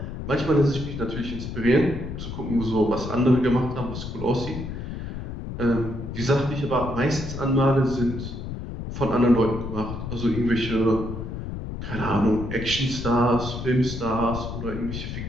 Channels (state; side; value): noise; left; rumble, 7 dB below the sound